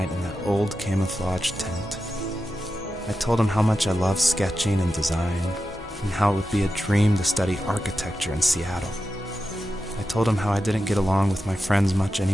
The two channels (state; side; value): normal; both; correlation 0.91